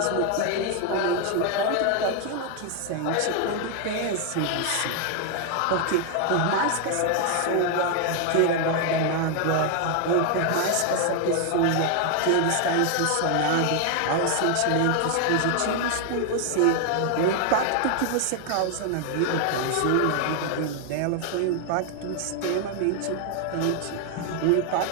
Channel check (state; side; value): different; both; correlation 0.00